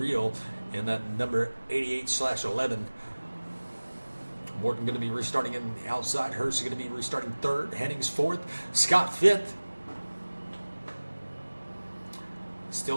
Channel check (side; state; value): both; inverted; correlation -1.00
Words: in that number 88/11. Morton going to be restarting in the outside. Hurst is going to be restarting 3rd. Hennings 4th. Scott 5th. Still